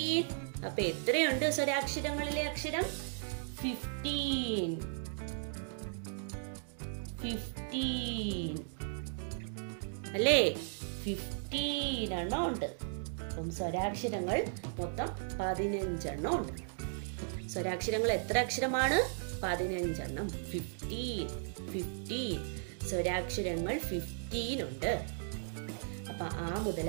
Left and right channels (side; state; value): left; silent; digital silence